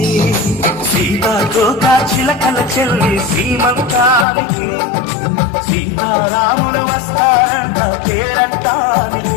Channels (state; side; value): drops out; right; at 4.2 s